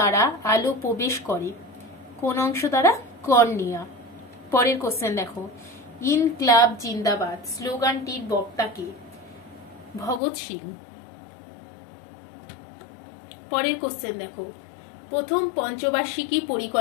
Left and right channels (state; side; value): drops out; right; at 10.2 s